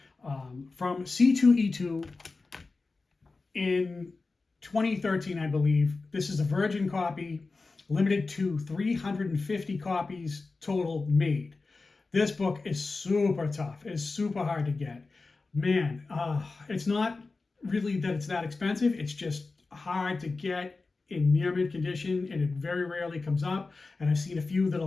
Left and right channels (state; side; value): quieter; right; 3.8 dB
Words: from C2E2 in 2013, I believe. This is a virgin copy, limited to 350 copies total made. This book is super tough. It's super hard to get. Man, it's not really that it's that expensive. It's just hard to get in near mint condition, and it very rarely comes up. And I've seen a few that are